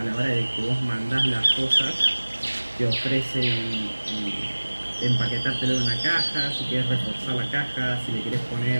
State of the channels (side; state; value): both; inverted; correlation -1.00